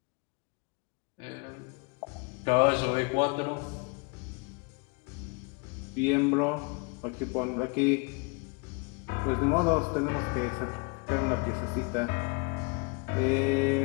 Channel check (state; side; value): quieter; right; 31.1 dB